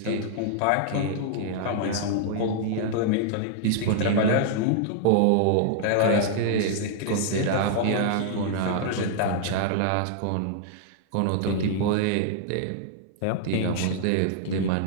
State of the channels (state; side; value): different; both; correlation -0.01